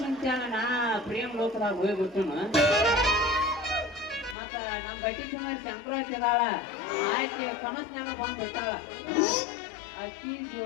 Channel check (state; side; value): drops out; right; at 4.4 s